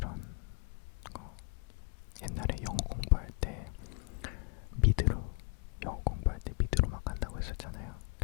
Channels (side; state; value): right; quieter; 33.8 dB